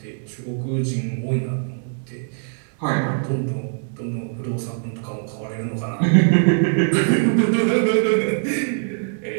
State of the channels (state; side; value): silent; left; digital silence